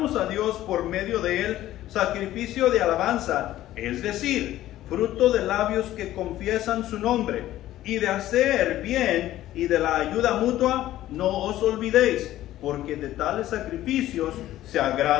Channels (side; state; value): right; quieter; 14.1 dB